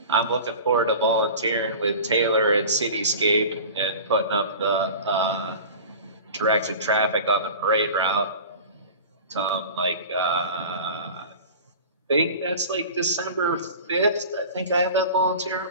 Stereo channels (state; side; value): inverted; both; correlation -0.37